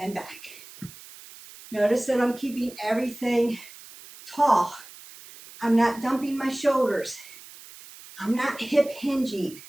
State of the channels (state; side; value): noise; right; hiss, 18 dB below the sound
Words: back. Notice that I'm keeping everything tall. I'm not dumping my shoulders. I'm not hip hinging.